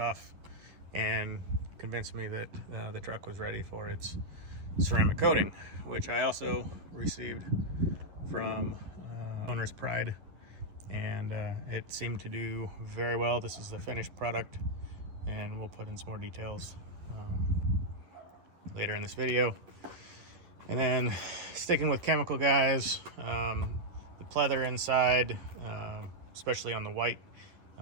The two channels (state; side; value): late; left; 10 ms